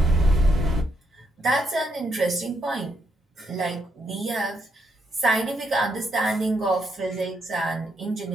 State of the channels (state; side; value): normal; both; correlation 0.78